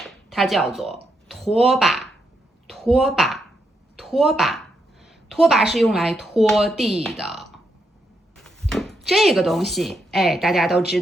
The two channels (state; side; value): normal; both; correlation 0.81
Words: 它叫做拖把。拖把，拖把，拖把是用来拖地的。这个东西，大家都知